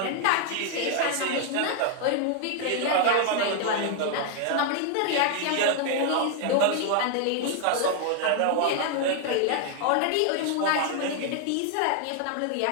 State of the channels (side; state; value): both; different; correlation 0.00